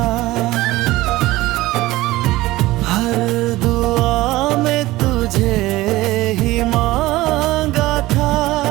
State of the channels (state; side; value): quieter; left; 18.1 dB